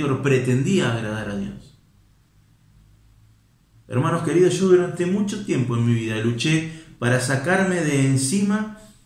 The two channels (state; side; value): identical; both; correlation 1.00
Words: pretendía agradar a Dios. Hermanos queridos, yo durante mucho tiempo en mi vida luché para sacarme de encima